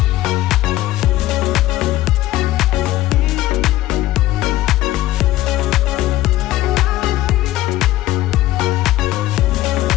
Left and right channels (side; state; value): right; quieter; 15.5 dB